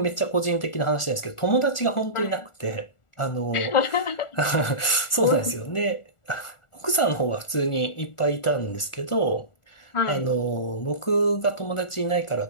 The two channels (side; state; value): right; late; 1.4 ms